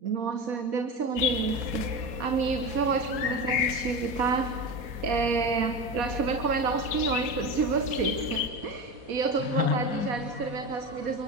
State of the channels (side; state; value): left; late; 4.2 ms